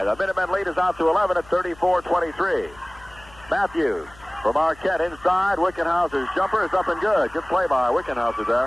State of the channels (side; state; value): left; noise; hum, 23 dB below the sound